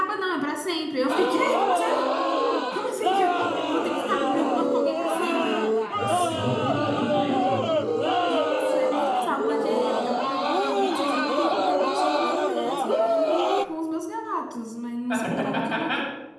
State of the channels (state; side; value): identical; both; correlation 1.00